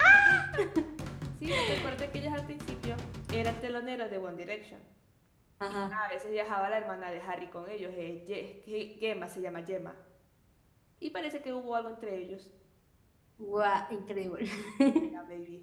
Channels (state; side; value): identical; both; correlation 1.00